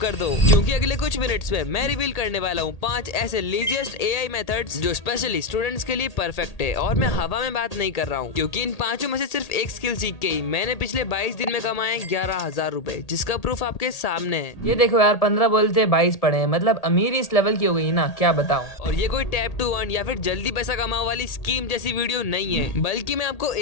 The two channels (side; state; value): right; late; 1.8 ms